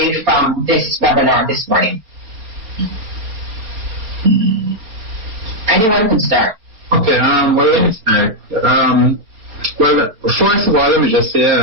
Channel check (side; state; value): left; late; 4.4 ms